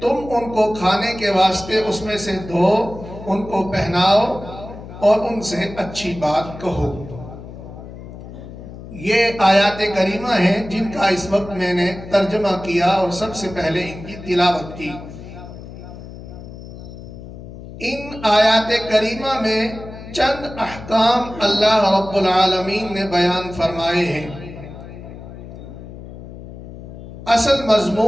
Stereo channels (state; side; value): noise; left; hum, 14 dB below the sound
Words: تم ان کو کھانے کے واسطے اس میں سے دو، ان کو پہناؤ اور ان سے اچھی بات کہو۔ یہ آیات کریمہ ہیں جن کا اس وقت میں نے ترجمہ کیا اور سب سے پہلے ان کی تلاوت کی۔ ان آیات کریمہ میں چند احکام اللہ رب العالمین نے بیان فرمائے ہیں۔ اصل